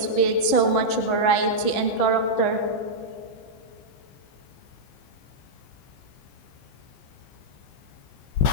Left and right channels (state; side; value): late; right; 15 ms